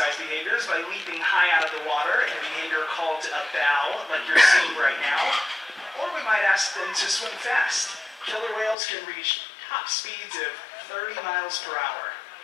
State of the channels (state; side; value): drops out; right; at 8.8 s